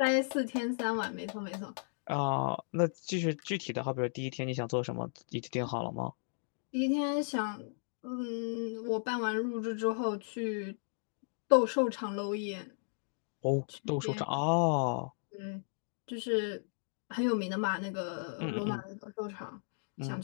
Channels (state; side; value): silent; right; digital silence